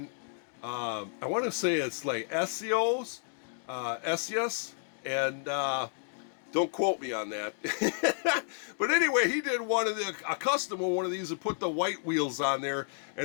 I want to say it's like SEOs, and don't quote me on that. But anyway, he did a custom of one of these and put the white wheels on there,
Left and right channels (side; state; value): right; silent; 57 dB below the other